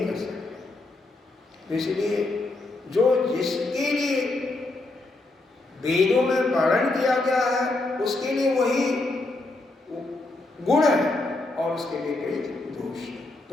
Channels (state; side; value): quieter; right; 3.0 dB